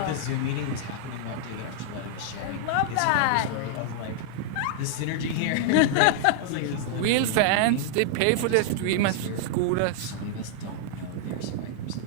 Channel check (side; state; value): both; different; correlation -0.01